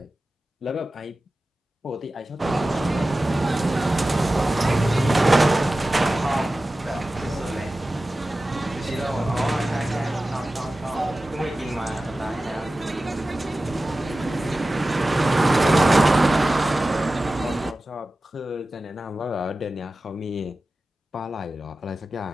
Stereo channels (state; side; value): normal; both; correlation 0.95